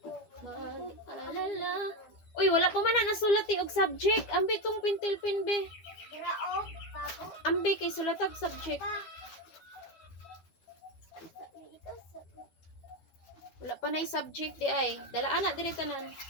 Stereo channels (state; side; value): late; right; 12 ms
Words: mag-alala? Uy, wala pa man na nasulat og subject. Ambi tong pintil-pin be. Grao, bago. Ambi kay sulatag subject. Wala pa na subject di ay. Dalaan na diri tanan.